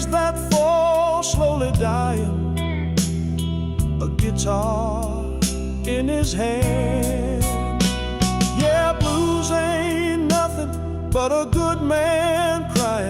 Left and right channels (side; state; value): both; identical; correlation 1.00